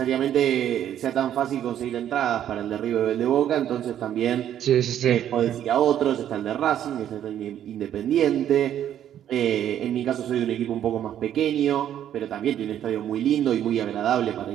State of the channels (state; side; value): quieter; left; 10.6 dB